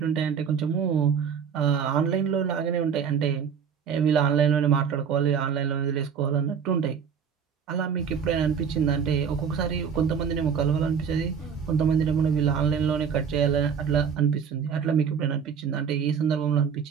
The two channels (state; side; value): quieter; left; 7.0 dB